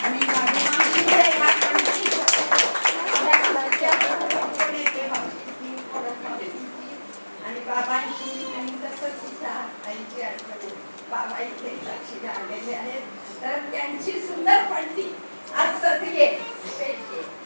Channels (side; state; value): both; inverted; correlation -1.00